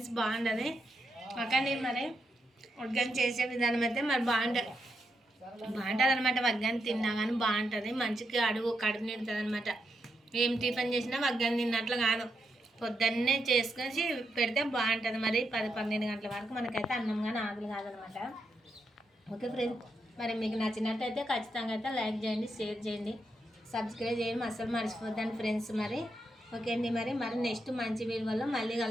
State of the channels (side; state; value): both; normal; correlation 0.82